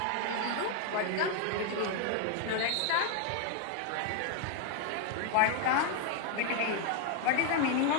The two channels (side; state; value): both; different; correlation 0.00